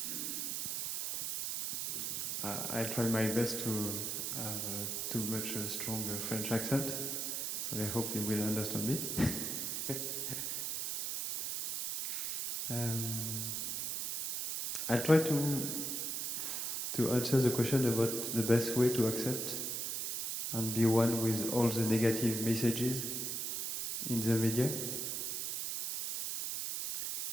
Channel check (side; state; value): right; noise; hiss, 2 dB below the sound